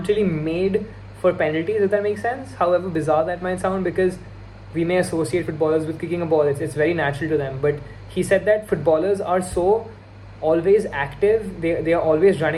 really made for penalties, if that makes sense. However bizarre that might sound, because we may associate footballers with kicking a ball. It's very natural to them. But he said that footballers are so always active, they are always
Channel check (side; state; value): both; identical; correlation 1.00